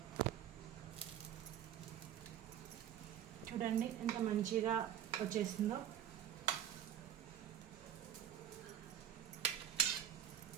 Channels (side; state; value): left; quieter; 10.1 dB